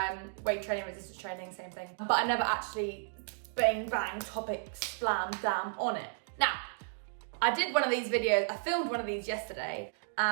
Weight training, resistance training, same thing. But I never actually bang topics slammed down on it. Now, I did one of these videos, I filmed one of these yesterday,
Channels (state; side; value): silent; left; digital silence